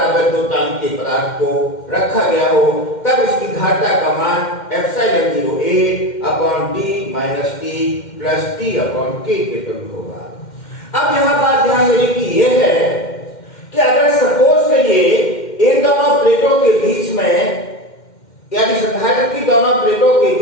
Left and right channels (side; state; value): right; late; 2.1 ms